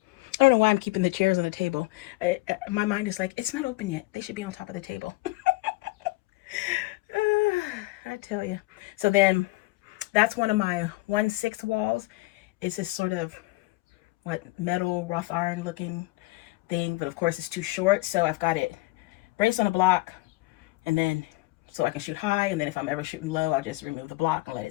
I don't know why I'm keeping the chairs on the table. My mind is like, it's not open yet. They should be on top of the table. I tell you. So then that's one of my 1/6 walls. It's this sort of metal wrought iron looking thing, but of course it's too short. So I've got it braced on a block, and then so I can shoot high. And then if I'm ever shooting low, I'll just remove the block and let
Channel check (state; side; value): quieter; right; 21.9 dB